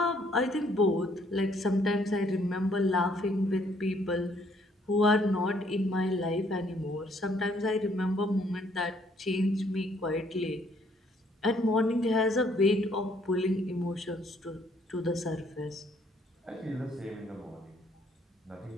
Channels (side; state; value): both; normal; correlation 0.65